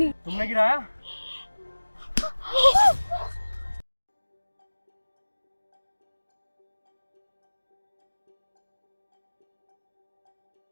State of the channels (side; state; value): both; inverted; correlation -1.00